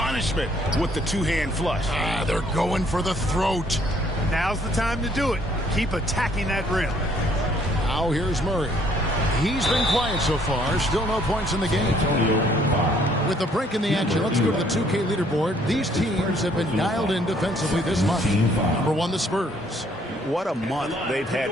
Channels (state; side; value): normal; both; correlation 0.64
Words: with the 2-hand flush. They're going for the throat. Now's the time to do it. Keep attacking that rim. Now here's Murray. He's been quiet so far. Still no points in the game. With the break in the action, let's go to the 2K leaderboard. These teams have been dialed in defensively this month. Number 1, the Spurs. What a month they've had